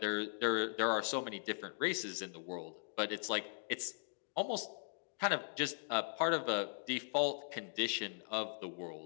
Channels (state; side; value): silent; right; digital silence